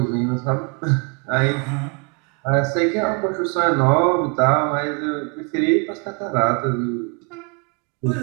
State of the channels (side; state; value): left; quieter; 34.6 dB